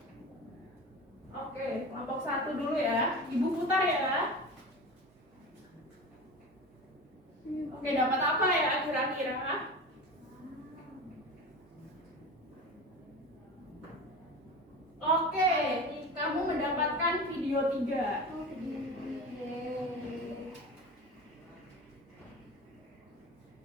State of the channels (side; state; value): both; normal; correlation 0.31